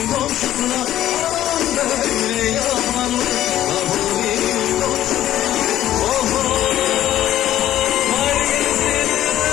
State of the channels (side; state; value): right; quieter; 12.8 dB